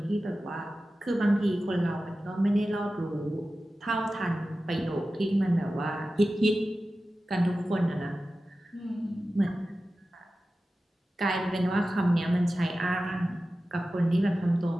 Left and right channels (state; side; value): normal; both; correlation 0.94